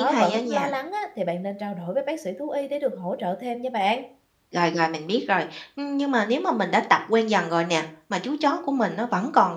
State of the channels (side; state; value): both; identical; correlation 1.00